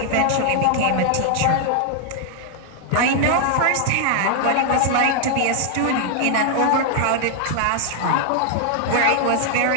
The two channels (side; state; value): both; different; correlation 0.00